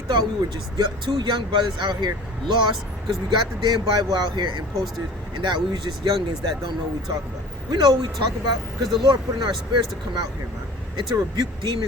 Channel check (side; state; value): both; normal; correlation 0.43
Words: We were just two young brothers out here lost because we got the damn Bible out here and posters, and that we was just youngins that don't know what we talk about. We know what we talk about because the Lord put in our spirits to come out here, man, and to rebuke